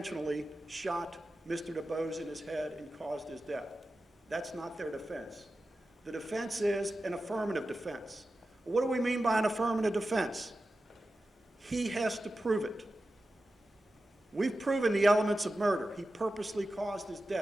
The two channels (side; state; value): both; normal; correlation 0.93